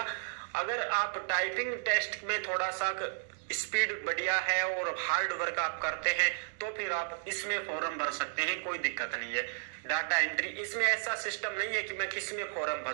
अगर आप टाइपिंग टेस्ट में थोड़ा सा स्पीड बढ़िया है और हार्ड वर्क आप करते हैं तो फिर आप इसमें फॉर्म भर सकते हैं, कोई दिक्कत नहीं है। डाटा एंट्री, इसमें ऐसा सिस्टम नहीं है कि मैं किस में फॉर्म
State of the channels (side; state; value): left; silent; digital silence